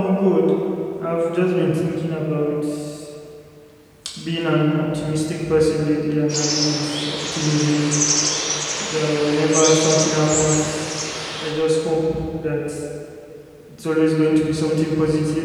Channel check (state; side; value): identical; both; correlation 1.00